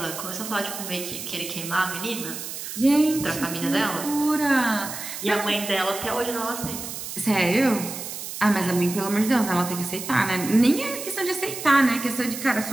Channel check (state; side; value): noise; right; hiss, 8 dB below the sound